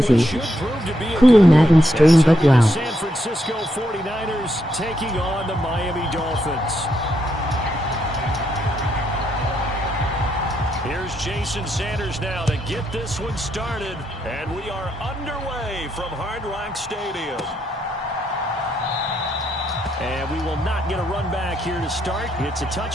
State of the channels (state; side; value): normal; both; correlation 0.79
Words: Cool Madden stream, but wow. San Francisco 49ers taking on the Miami Dolphins. Here's Jason Sanders now to get this one started, and we are underway from Hard Rock Stadium. And we will not get a run back here to start. It's a